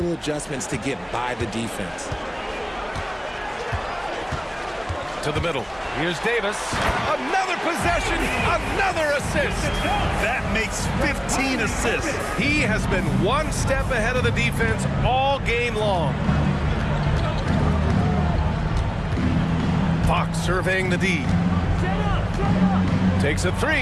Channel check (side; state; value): both; identical; correlation 1.00